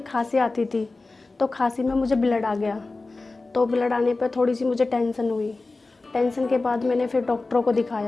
खांसी आती थी, तो खांसी में मुझे ब्लड आ गया। तो ब्लड आने पर थोड़ी सी मुझे टेंशन हुई। टेंशन के बाद मैंने फिर डॉक्टरों को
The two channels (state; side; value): quieter; right; 3.4 dB